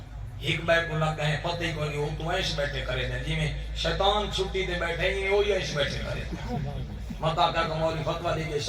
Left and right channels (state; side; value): identical; both; correlation 1.00